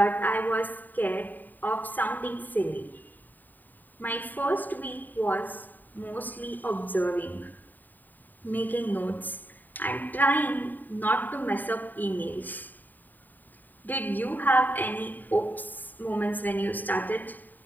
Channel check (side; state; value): right; late; 0.088 ms